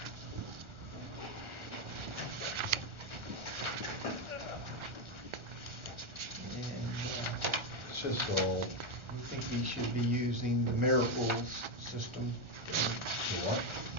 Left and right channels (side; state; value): left; late; 1.4 ms